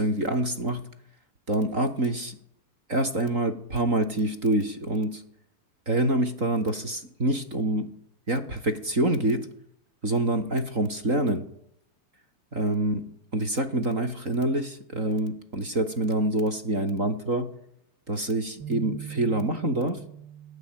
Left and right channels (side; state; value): left; late; 3.8 ms